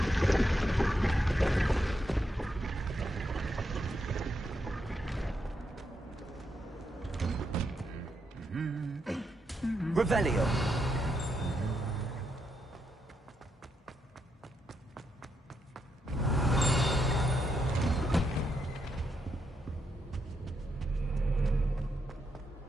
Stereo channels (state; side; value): normal; both; correlation 0.81